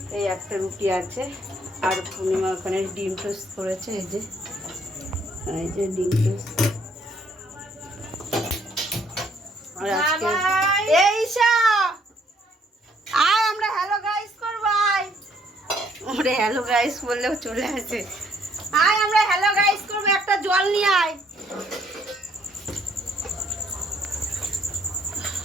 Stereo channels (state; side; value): normal; both; correlation 0.66